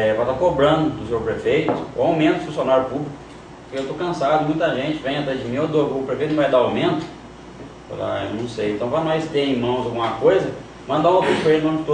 estar cobrando do senhor prefeito o aumento do funcionário público. Eu estou cansado, muita gente vem atrás de mim, o prefeito não vai dar aumento? Eu falo, eu não sei. Então, para nós ter em mãos alguma coisa, mandar um ofício para ele, em nome de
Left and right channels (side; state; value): both; identical; correlation 1.00